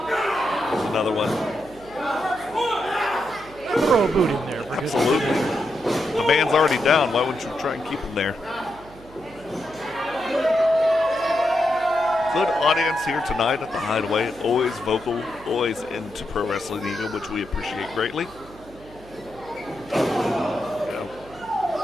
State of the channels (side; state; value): right; noise; hum, 21 dB below the sound